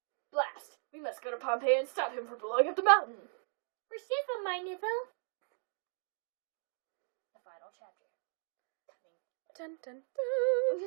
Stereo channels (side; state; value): left; silent; 53 dB below the other